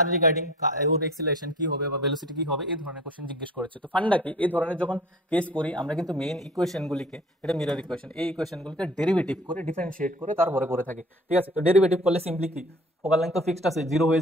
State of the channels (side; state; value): both; normal; correlation 0.45